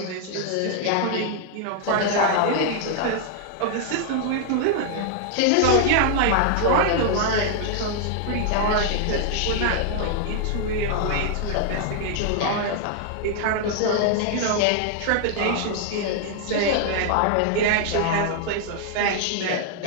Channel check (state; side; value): different; both; correlation 0.00